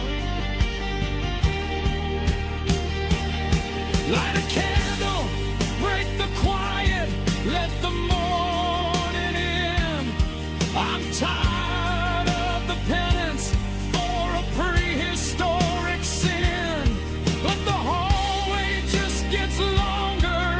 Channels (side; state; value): both; identical; correlation 1.00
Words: Light a candle, break the quiet, let the morning in. I'm tired of the penance for a prehistoric sin, but the hallway just gets longer